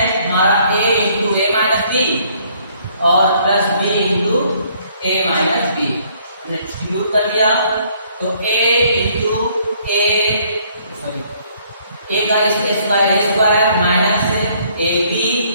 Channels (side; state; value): both; inverted; correlation -0.63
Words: हमारा a into a minus b और plus b into a minus b. हमने डिस्ट्रीब्यूट कर दिया तो a into a sorry a का square minus a b